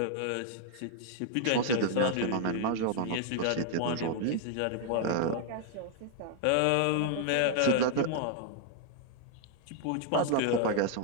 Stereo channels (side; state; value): both; different; correlation 0.00